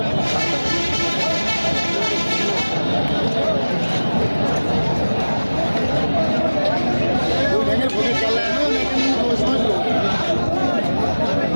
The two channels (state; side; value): inverted; both; correlation -1.00